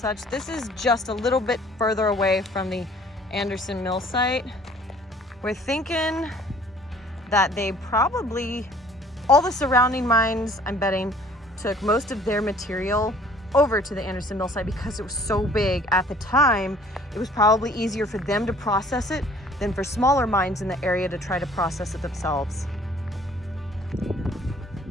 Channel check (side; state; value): both; normal; correlation 0.54